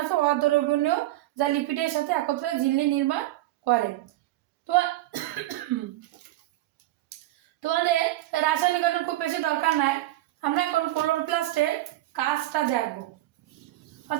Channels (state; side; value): quieter; left; 16.3 dB